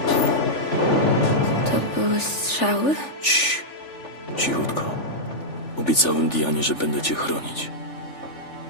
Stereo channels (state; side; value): late; right; 3.4 ms